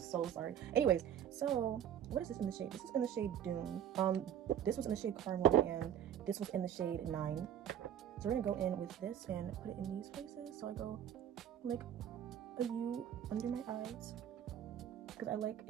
sorry. Anyways, so what is this in the shade? This is in the shade Dune. This was in the shade Caramel, and this was in the shade 9. So we're gonna go in with this and put it in these places. So I go like a U under my eyes because I like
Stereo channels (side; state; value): left; quieter; 9.8 dB